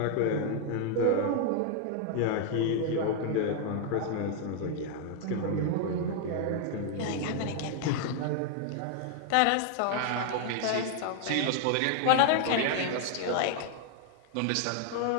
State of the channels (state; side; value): different; both; correlation 0.00